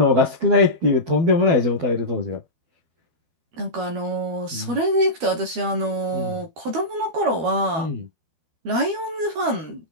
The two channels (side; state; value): left; late; 12 ms